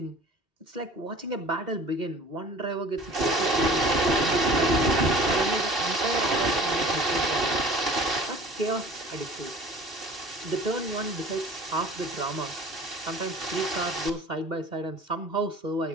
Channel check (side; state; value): both; normal; correlation 0.44